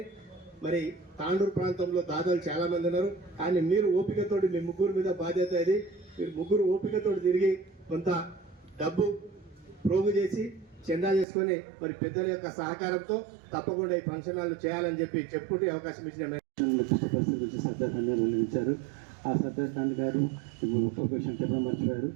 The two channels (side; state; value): left; drops out; at 11.2 s